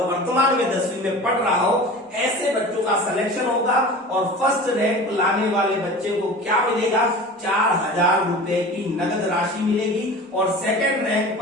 वर्तमान में 10वीं में पढ़ रहा हो, ऐसे बच्चों का सिलेक्शन होगा। और फर्स्ट रैंक लाने वाले बच्चे को क्या मिलेगा, 4000 रुपए की नगद राशि मिलेगी। और सेकंड रैंक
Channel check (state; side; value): normal; both; correlation 0.36